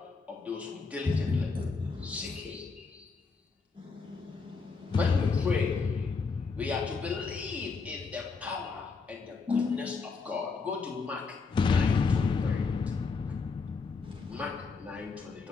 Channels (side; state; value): right; quieter; 4.7 dB